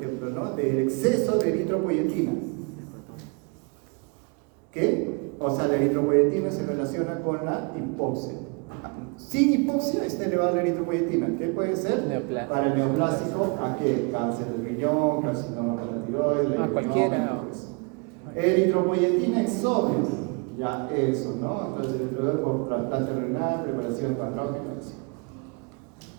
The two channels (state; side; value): quieter; left; 32.9 dB